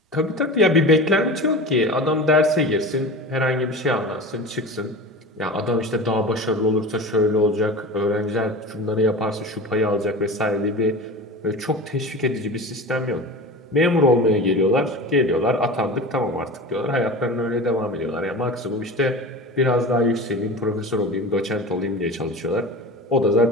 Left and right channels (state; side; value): normal; both; correlation 0.31